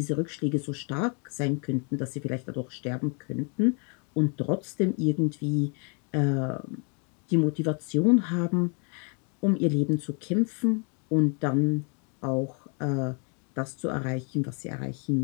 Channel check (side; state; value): right; quieter; 38.0 dB